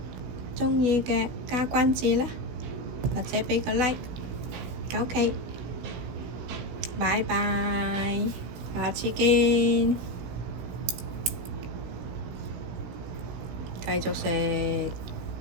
鍾意嘅加關注啦，或者畀個 like。OK，拜拜，下次見。繼續食。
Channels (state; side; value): late; left; 16 ms